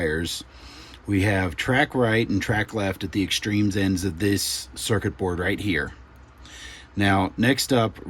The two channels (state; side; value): identical; both; correlation 1.00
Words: we have track right and track left at the extremes ends of this circuit board right here. Now, next up,